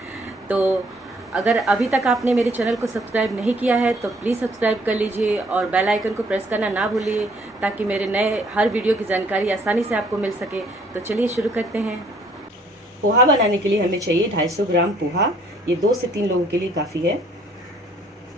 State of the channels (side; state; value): both; normal; correlation 0.62